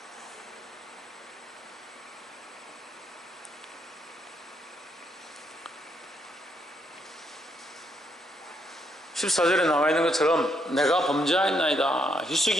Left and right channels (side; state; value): both; normal; correlation 0.75